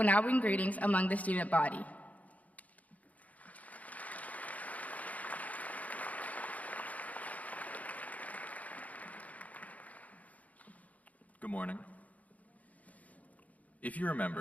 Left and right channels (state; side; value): late; right; 0.073 ms